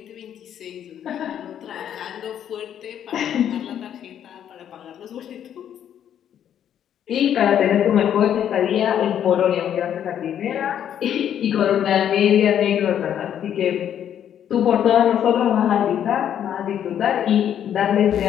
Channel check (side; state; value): right; quieter; 9.7 dB